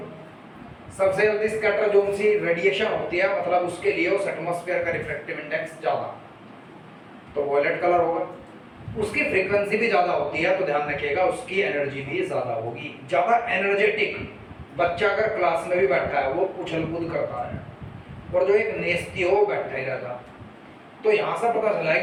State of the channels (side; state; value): both; identical; correlation 1.00